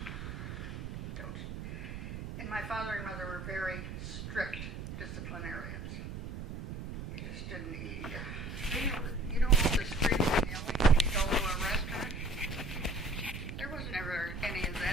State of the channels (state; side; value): noise; right; rumble, 8 dB below the sound